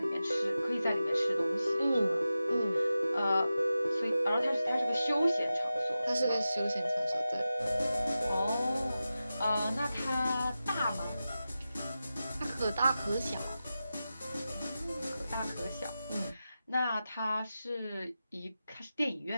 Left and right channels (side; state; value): both; inverted; correlation -0.93